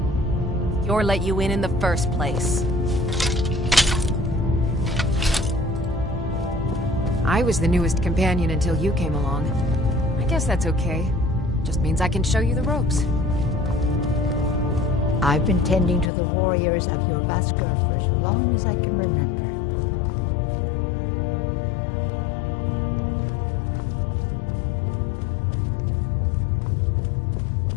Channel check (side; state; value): right; drops out; at 16.1 s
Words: Skjor let you in the first place. I was the newest companion until you came along. I guess that's okay. Just means I can show you the ropes. I've been tending to the warriors of your Vaskar for as long as I can remember.